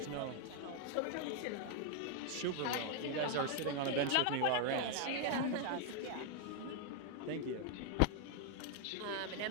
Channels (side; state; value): both; different; correlation 0.00